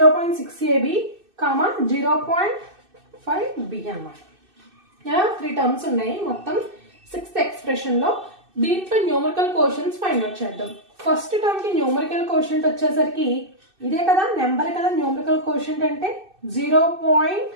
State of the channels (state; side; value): late; left; 2.6 ms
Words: 0.5b అన్నమాట. 3 టర్మ్స్ ఉన్నాయి మొత్తం సిక్స్త్ ఎక్స్ప్రెషన్ లో. దీంట్లో న్యూమరికల్ కోషంట్స్ ఫైండ్ అవుట్ చేద్దాం. ఫస్ట్ టర్మ్ కి న్యూమరికల్ కోషంట్ వచ్చేసరికి ఇదే కదా, నెంబర్ కదా న్యూమరికల్ కోషంట్ అంటే